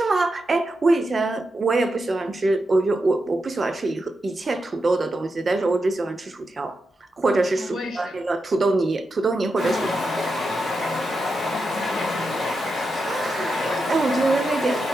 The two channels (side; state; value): both; normal; correlation 0.87